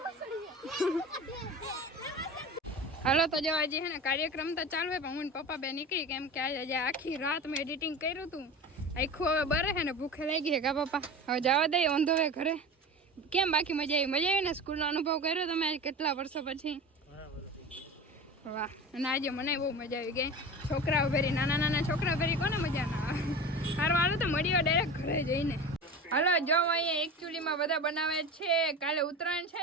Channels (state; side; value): normal; both; correlation 0.32